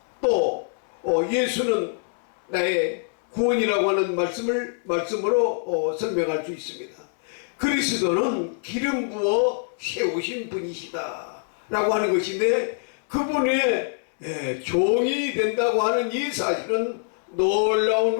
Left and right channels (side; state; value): right; silent; 62 dB below the other